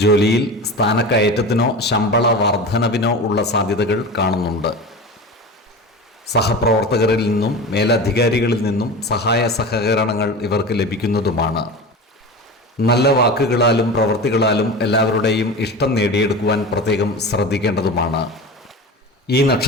ജോലിയിൽ സ്ഥാനക്കയറ്റത്തിനോ ശമ്പള വർധനവിനോ ഉള്ള സാധ്യതകൾ കാണുന്നുണ്ട്. സഹപ്രവർത്തകരിൽ നിന്നും മേലധികാരികളിൽ നിന്നും സഹായ സഹകരണങ്ങൾ ഇവർക്ക് ലഭിക്കുന്നതുമാണ്. നല്ല വാക്കുകളാലും പ്രവൃത്തികളാലും എല്ലാവരുടെയും ഇഷ്ടം നേടിയെടുക്കുവാൻ പ്രത്യേകം ശ്രദ്ധിക്കേണ്ടതുമാണ്. ഈ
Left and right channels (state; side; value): normal; both; correlation 0.30